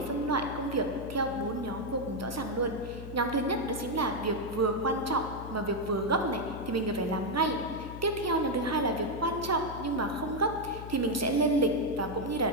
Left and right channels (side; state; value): left; noise; hum, 10 dB below the sound